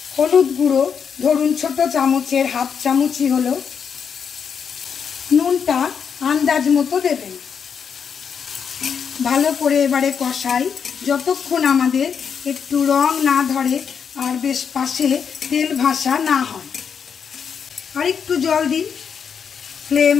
হলুদ গুঁড়ো ধরুন ছোট চামচের 1/2 চামচই হলো। নুনটা আন্দাজ মতো দেবেন। ভালো করে এবারে কষাই, যতক্ষণ আমাদের একটু রং না ধরে আর বেশ পাশে তেল ভাসা না হয়। আর একটু জল দিই। Flame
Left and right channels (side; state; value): right; quieter; 6.9 dB